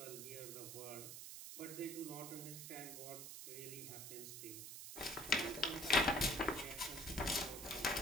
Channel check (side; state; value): right; noise; hiss, 8 dB below the sound